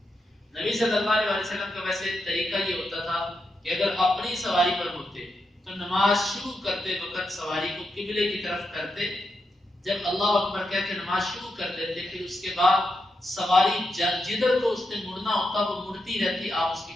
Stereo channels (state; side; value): normal; both; correlation 0.85